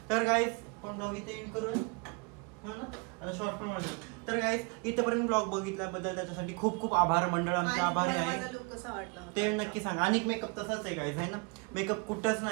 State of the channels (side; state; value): left; quieter; 31.4 dB